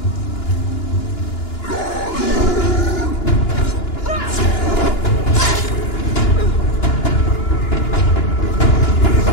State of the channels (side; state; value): right; late; 2.9 ms